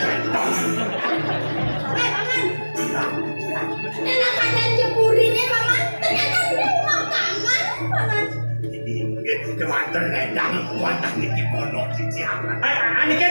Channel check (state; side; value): inverted; both; correlation -1.00